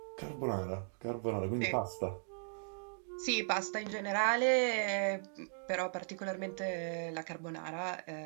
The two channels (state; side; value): silent; left; digital silence